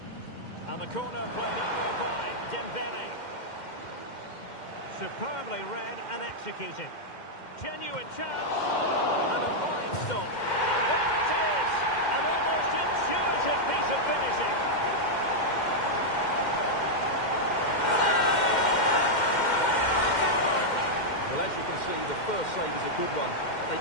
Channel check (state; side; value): late; right; 2.1 ms